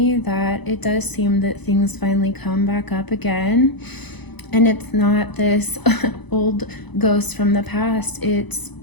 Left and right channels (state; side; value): late; right; 0.99 ms